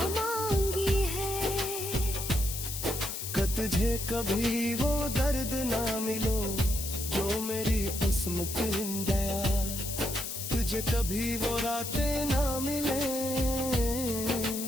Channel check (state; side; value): noise; left; hiss, 5 dB below the sound